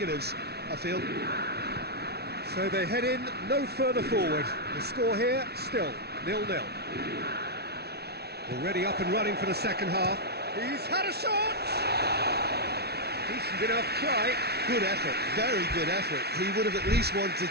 I feel. So they head in no further forward. The score here, still 0-0. Already up and running for the second half. He's had a shot! Decent enough try. Good effort, very good effort. He would have at least wanted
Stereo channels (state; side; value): late; left; 0.47 ms